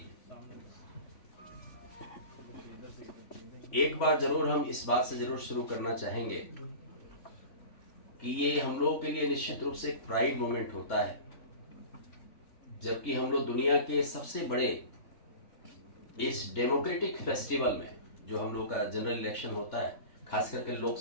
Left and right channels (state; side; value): late; right; 3.5 ms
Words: एक बार जरूर हम इस बात से जरूर शुरू करना चाहेंगे कि ये हम लोगों के लिए निश्चित रूप से एक प्राइड मोमेंट होता है, जबकि हम लोग दुनिया के सबसे बड़े इस डेमोक्रेटिक फेस्टिवल में जो हम लोग का जनरल इलेक्शन होता है, खास करके